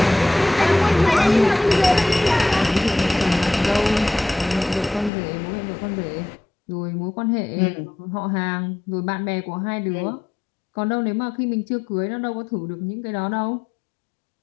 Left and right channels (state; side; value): drops out; right; at 5.1 s